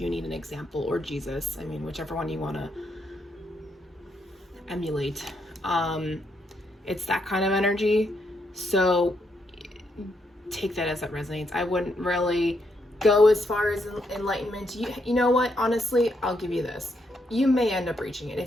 need an example, or Jesus. I mean, whichever one you want to emulate. It's that kind of energy. So take that as it resonates. I wouldn't really go as far as enlightenment. You know what? Honestly, I'll give you this. You may end up reaching it.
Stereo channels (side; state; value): both; normal; correlation 0.78